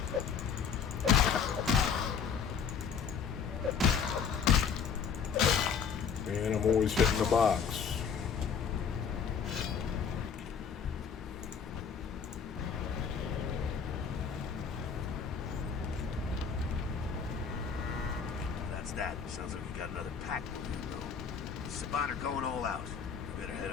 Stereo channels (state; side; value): quieter; right; 6.6 dB